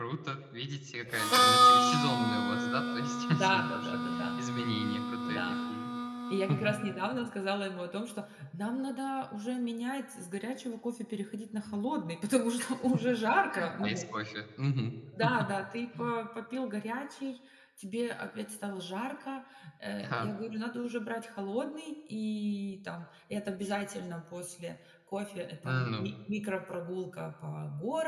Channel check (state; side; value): identical; both; correlation 1.00